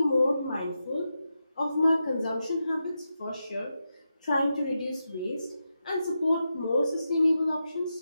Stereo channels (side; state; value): both; inverted; correlation -0.88